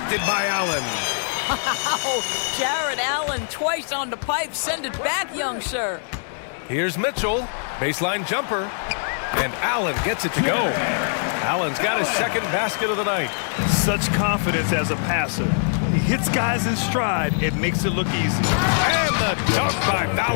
by Allen. Wow, Jared Allen twice on the pipe. Send it back, young sir. Here's Mitchell. Baseline jumper. And Allen gets it to go. Allen's got his second basket of the night. Such confidence as a passer. He hits guys in stride. It makes it look easy. And the dunk by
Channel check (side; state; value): right; silent; digital silence